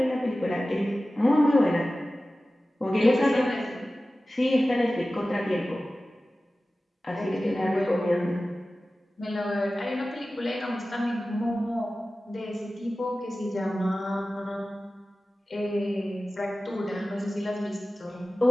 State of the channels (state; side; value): normal; both; correlation 0.96